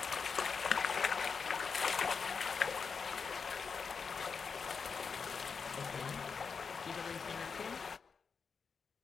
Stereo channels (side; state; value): right; quieter; 5.6 dB